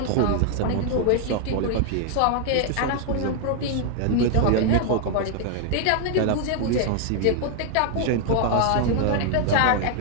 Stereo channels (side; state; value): both; different; correlation 0.00